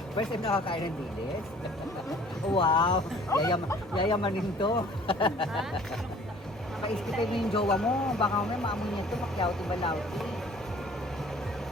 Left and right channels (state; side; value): normal; both; correlation 0.52